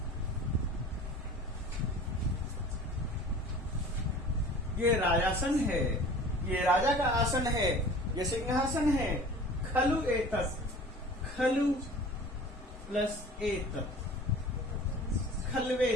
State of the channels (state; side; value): normal; both; correlation 0.43